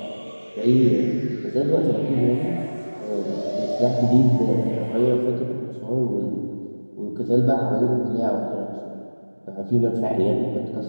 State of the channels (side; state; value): both; inverted; correlation -1.00